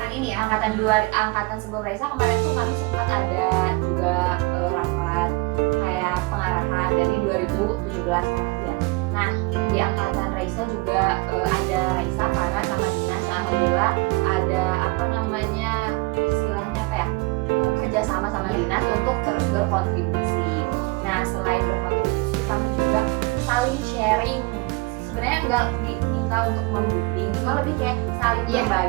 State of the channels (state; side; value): quieter; left; 25.1 dB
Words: ini ya? angkatan sebelum Raisa kemarin tuh kami sempat ada juga rapat kayak pengarahan dari 2017 kan ya. Nah di angkatan Raisa juga ada Raisa karena sama dinas, alhamdulillah ada apa namanya istilahnya apa ya, kerjasama sama dinas untuk terus berkontribusi. Nah selain berkontribusi kami juga saling sharing, sebenarnya nggak diminta untuk membimbing, cuma lebih kayak saling Iya,